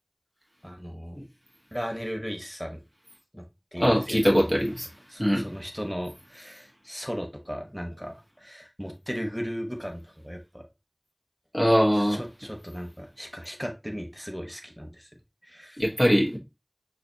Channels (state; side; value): identical; both; correlation 1.00